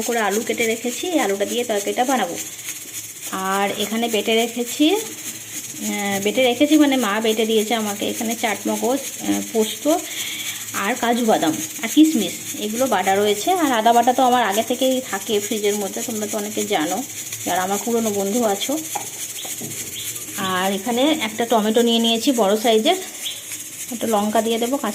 করে আলু কেটে রেখেছি, আলুটা দিয়ে তরকারিটা বানাবো। আর এখানে বেটে রেখেছি মানে মা বেটে দিয়েছে আমাকে। এখানে চাটমগজ, পোস্ত আর কাজু বাদাম আর কিশমিশ এগুলো বাটা রয়েছে। আর আদা বাটা তো আমার আগে থেকেই থাকে ফ্রিজের মধ্যে, তোমরা তো অনেকে জানো যারা আমার পুরনো বন্ধু আছো। আর এখানে একটা টমেটো নিয়ে নিয়েছি বড় সাইজের, একটা লঙ্কা দিয়ে দেবো,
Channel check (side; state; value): both; identical; correlation 1.00